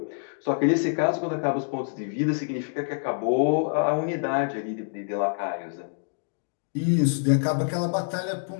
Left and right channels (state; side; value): silent; right; digital silence